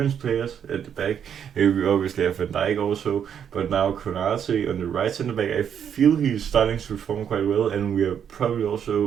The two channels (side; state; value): left; quieter; 8.4 dB